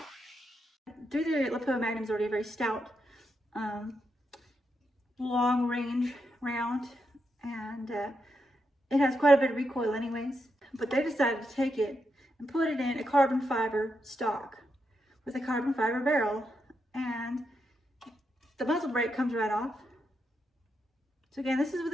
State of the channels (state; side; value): normal; both; correlation 0.83